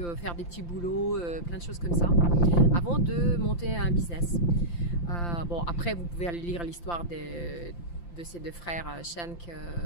faire des petits boulots, plein de choses comme ça, avant de monter un business. Bon, après, vous pouvez aller lire l'histoire de ces deux frères Schenk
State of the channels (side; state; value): right; late; 5.8 ms